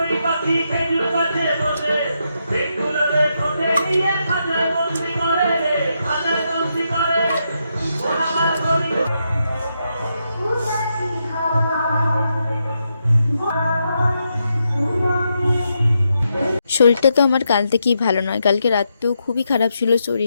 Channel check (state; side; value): inverted; both; correlation -0.82